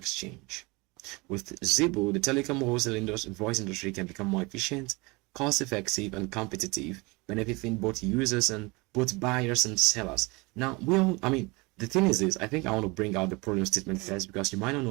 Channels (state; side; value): quieter; left; 25.5 dB